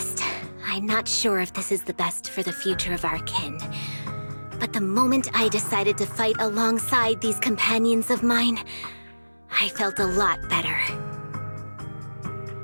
I'm not sure if this is the best for the future of our kin. But the moment I decided to fight alongside these companions of mine, I felt a lot better.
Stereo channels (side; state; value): both; inverted; correlation -1.00